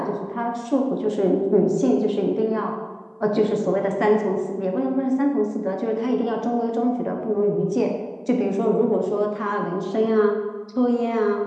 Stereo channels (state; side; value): identical; both; correlation 1.00